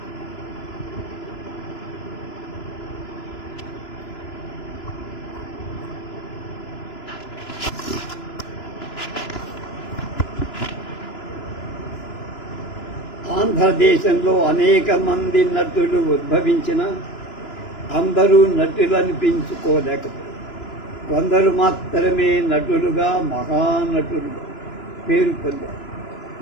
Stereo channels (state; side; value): late; right; 2.9 ms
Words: ఆంధ్రదేశంలో అనేక మంది నటులు ఉద్భవించిన అందరూ నటులు అనిపించుకోలేకపోయారు. కొందరు మాత్రమే నటులుగా మహానటులుగా పేరు పొందారు.